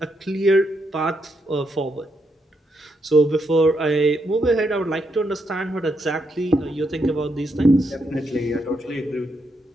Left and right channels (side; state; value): both; normal; correlation 0.80